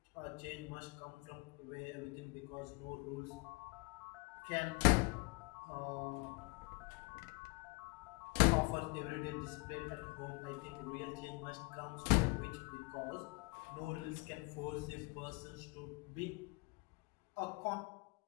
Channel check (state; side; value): quieter; right; 28.8 dB